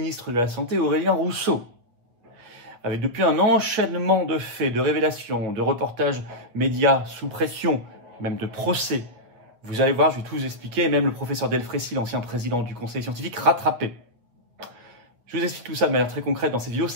de la Santé, Aurélien Rousseau. Avec depuis un enchaînement de faits, de révélations, de reportages médias sous pression, même de procès. Vous allez voir, je vais tout vous expliquer. Et même le professeur Delfrécy, l'ancien président du conseil scientifique, rattrapé. Je vous explique tout ça de manière très concrète dans cette vidéo.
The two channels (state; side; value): late; left; 8.6 ms